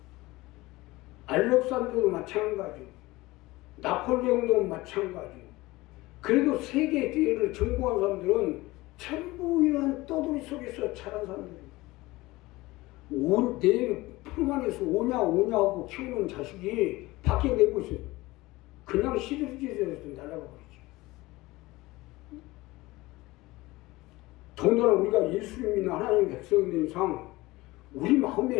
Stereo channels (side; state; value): right; quieter; 20.1 dB